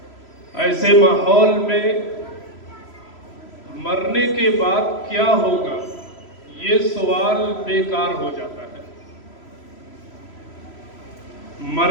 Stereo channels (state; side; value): late; right; 3.0 ms